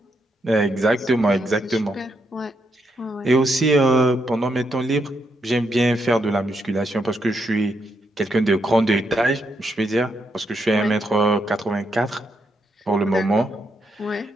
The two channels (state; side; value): normal; both; correlation 0.79